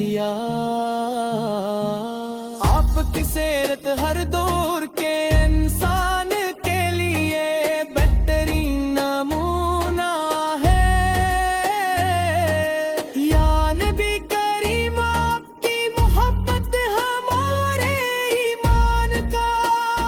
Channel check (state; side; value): identical; both; correlation 1.00